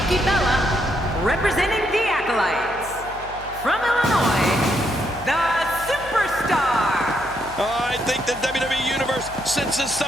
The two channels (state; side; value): noise; left; hum, 17 dB below the sound